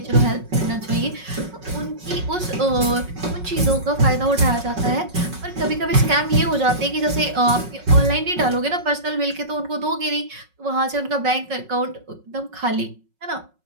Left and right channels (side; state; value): left; late; 5.4 ms